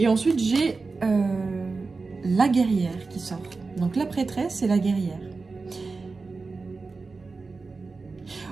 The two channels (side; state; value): left; quieter; 4.1 dB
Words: ensuite, j'ai la guerrière qui sort. Donc la prêtresse et la guerrière.